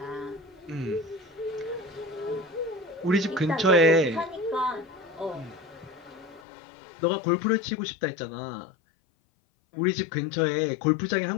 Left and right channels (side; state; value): right; drops out; at 6.4 s